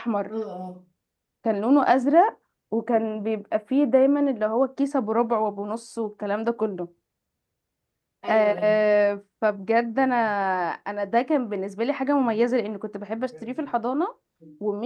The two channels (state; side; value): identical; both; correlation 1.00